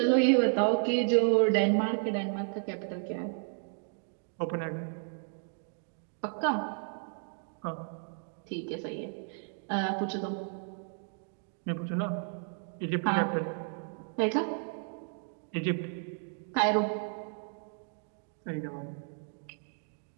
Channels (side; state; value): left; silent; 56 dB below the other